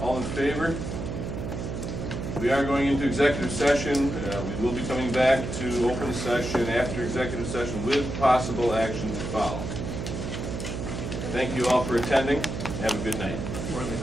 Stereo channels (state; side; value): noise; right; hum, 5 dB below the sound